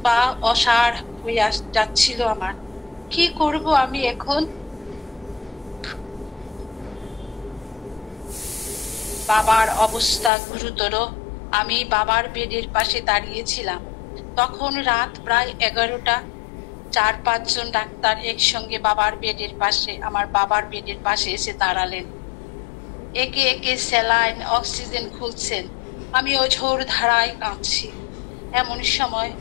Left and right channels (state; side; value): drops out; right; at 10.3 s